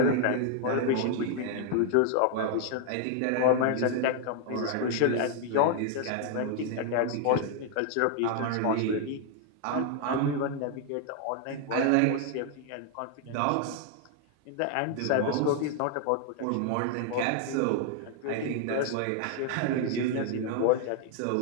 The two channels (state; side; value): different; both; correlation 0.00